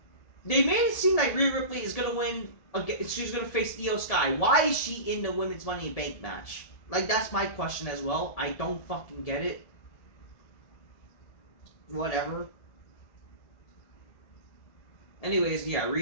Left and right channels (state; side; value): late; right; 1.7 ms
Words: they made it seem like Rhea Ripley is gonna win. She's gonna face Io Sky. Why is she in the women's Money in the Bank match? Like, that's my question as well. I don't fucking get it. Whatever. Anyways, yeah,